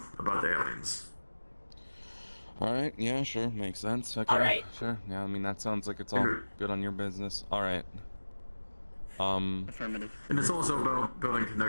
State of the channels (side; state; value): both; inverted; correlation -1.00